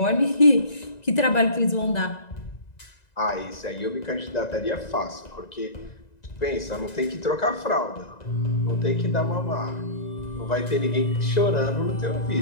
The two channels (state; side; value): late; right; 1.9 ms